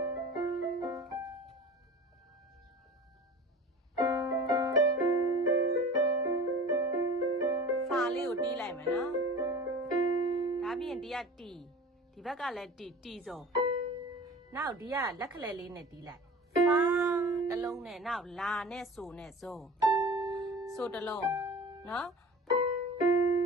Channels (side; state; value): both; normal; correlation 0.38